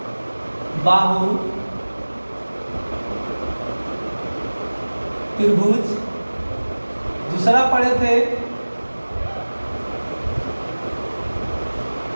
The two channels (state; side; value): inverted; both; correlation -1.00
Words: बाहु त्रिभुज। दूसरा पढ़े थे